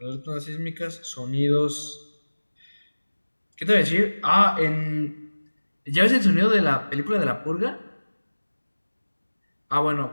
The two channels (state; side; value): inverted; both; correlation -1.00